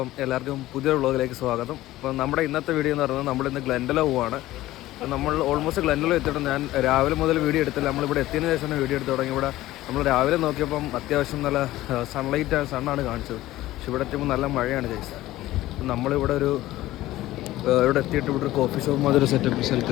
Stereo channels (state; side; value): quieter; right; 16.1 dB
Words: എല്ലാവർക്കും പുതിയൊരു വ്ളോഗിലേക്ക് സ്വാഗതം. അപ്പം നമ്മുടെ ഇന്നത്തെ വീഡിയോ എന്ന് പറയുന്നത് നമ്മളിന്ന് ഗ്ലെൻഡലോ പോവാണ്. നമ്മൾ ഓൾമോസ്റ്റ് ഗ്ലെൻഡലോ എത്തിയിട്ട് ഞാൻ രാവിലെ മുതൽ വീഡിയോ എടുത്തില്ല. നമ്മളിവിടെ എത്തിയതിന് ശേഷം വീഡിയോ എടുത്ത് തുടങ്ങി. ഇവിടെ നമ്മൾ രാവിലെ നോക്കിയപ്പം അത്യാവശ്യം നല്ല സണ്ണാണ് കാണിച്ചത്. പക്ഷെ ഇവിടെ എത്തുമ്പോൾ നല്ല മഴയാണ് ഗൈസ്. നമ്മളിവിടെ ഇവിടെ എത്തിയിട്ട് ഇവിടെ ഒരു കോഫി ഷോപ്പ് മാതിരി സെറ്റപ്പ്